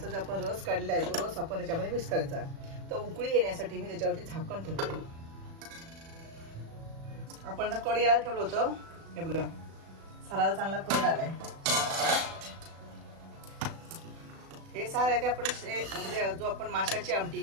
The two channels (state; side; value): late; left; 36 ms